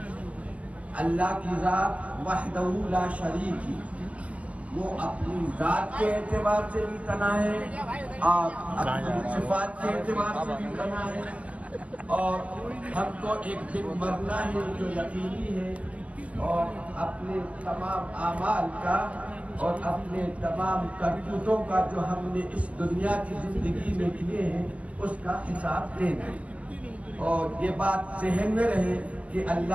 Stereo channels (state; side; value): late; left; 0.064 ms